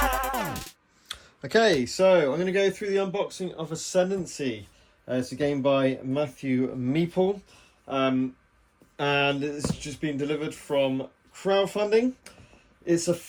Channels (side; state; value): both; identical; correlation 1.00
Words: so I'm going to go through the unboxing of Ascendency. It's a game by Matthew Meeple, and it's just been delivered from crowdfunding. It's a